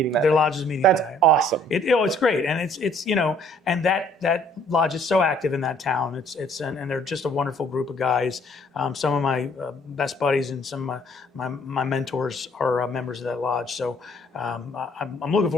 that. Their lodge is meeting That's that. awesome. It's great, and it's and that lodge is so active in that town. And they're just a wonderful group of guys. Some of my best buddies and some of my mentors are members of that lodge. So I'm looking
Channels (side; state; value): both; normal; correlation 0.60